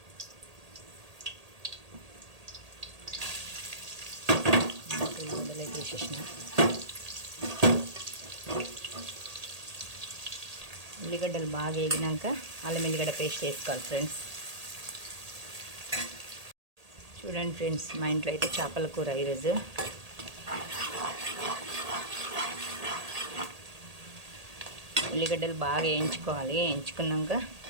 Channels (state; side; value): late; left; 1.8 ms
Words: ఉల్లిగడ్డలు వేసేసిన ఉల్లిగడ్డలు బాగా వేగినాక అల్లం ఎల్లిగడ్డ పేస్ట్ వేసుకోవాలి ఫ్రెండ్స్. చూడండి ఫ్రెండ్స్, మా ఇంట్లో అయితే చేపల కూర ఈరోజు. ఉల్లిగడ్డలు బాగా వేయించుకోవాలి. వేయించుకున్నాక